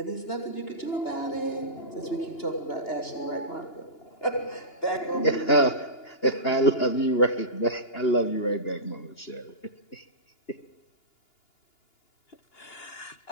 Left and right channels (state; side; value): late; right; 2.9 ms